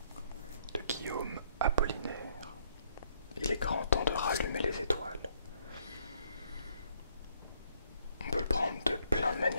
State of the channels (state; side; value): inverted; both; correlation -0.68